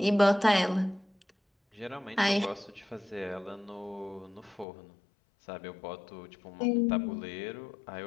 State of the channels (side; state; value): right; drops out; at 4.7 s